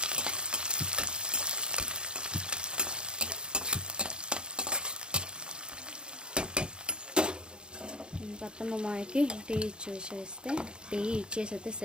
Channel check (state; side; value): late; left; 0.050 ms